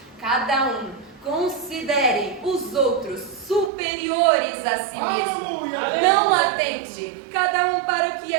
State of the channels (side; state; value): left; drops out; at 3.7 s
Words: cada um considere os outros superiores a si mesmo. Não atente cada um para o que